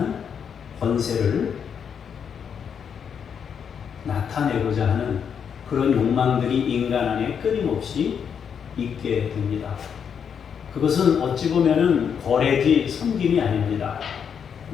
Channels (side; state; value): right; quieter; 7.4 dB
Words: 권세를 나타내고자 하는 그런 욕망들이 인간 안에 끊임없이 있게 됩니다. 그것은 어찌 보면은 거래지 섬김이 아닙니다.